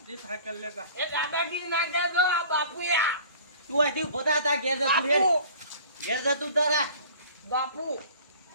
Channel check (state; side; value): inverted; both; correlation -0.46